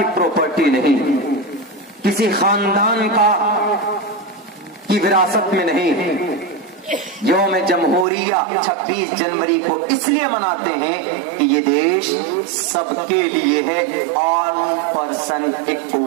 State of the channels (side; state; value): left; drops out; at 8.1 s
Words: پراپرٹی نہیں، کسی خاندان کی وراثت میں نہیں. یوم جمہوریہ 26 جنوری کو اس لیے مناتے ہیں کہ یہ دیش سب کے لیے ہے. آل پرسن